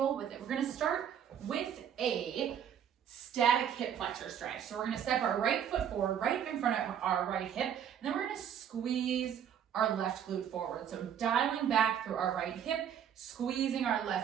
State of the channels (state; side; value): quieter; left; 8.9 dB